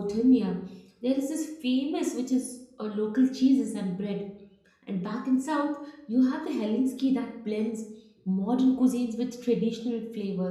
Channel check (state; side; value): identical; both; correlation 1.00